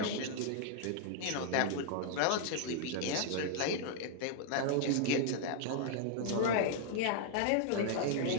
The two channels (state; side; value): different; both; correlation 0.00